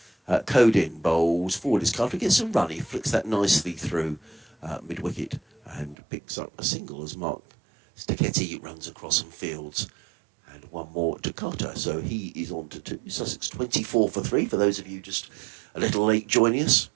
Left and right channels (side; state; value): left; drops out; at 6.0 s